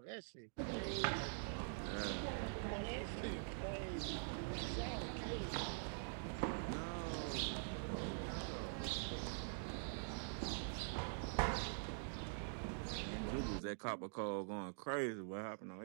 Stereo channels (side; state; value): left; silent; digital silence